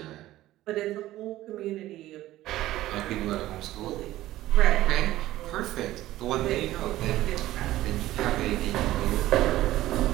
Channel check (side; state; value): left; quieter; 15.3 dB